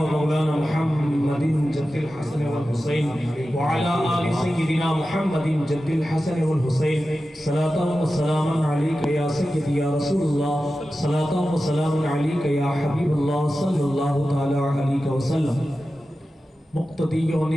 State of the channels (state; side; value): normal; both; correlation 0.93